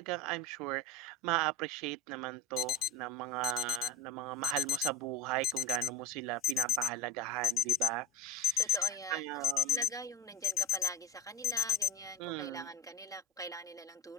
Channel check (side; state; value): both; normal; correlation 0.33